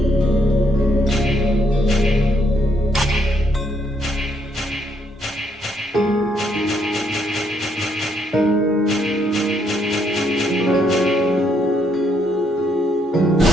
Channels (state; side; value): normal; both; correlation 0.73